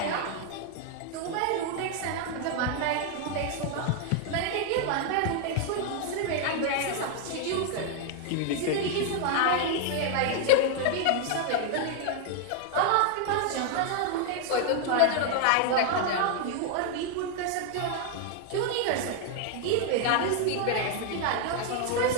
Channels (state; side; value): different; both; correlation 0.00